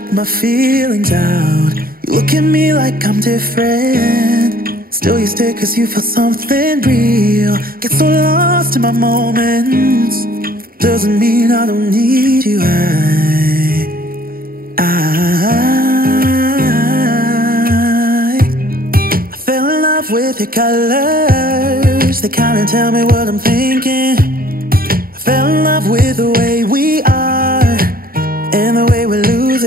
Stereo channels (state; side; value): late; left; 0.43 ms